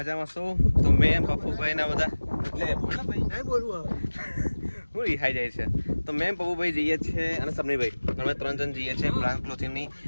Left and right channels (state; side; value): inverted; both; correlation -1.00